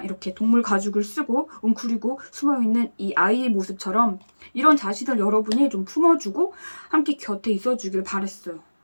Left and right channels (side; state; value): both; inverted; correlation -1.00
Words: 이렇게 동물 가죽을 쓰고 웅크리고 숨어있는 이 아이의 모습처럼 이런 자신을 여러분이 좀 품어주고 함께 곁에 있어주길 바랬어요.